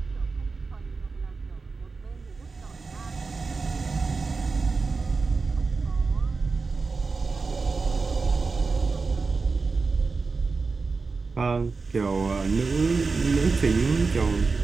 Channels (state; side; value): quieter; left; 4.3 dB